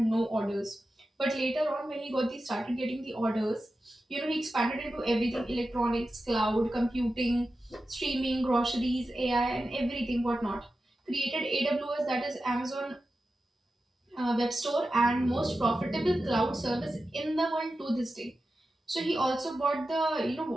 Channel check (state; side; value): normal; both; correlation 0.92